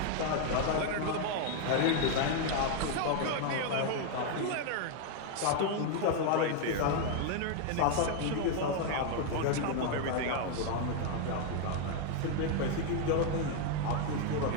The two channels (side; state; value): both; different; correlation 0.00